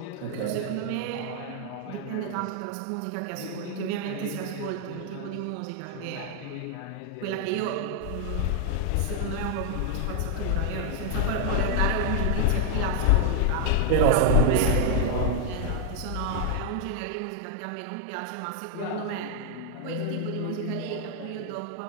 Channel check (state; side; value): different; both; correlation 0.00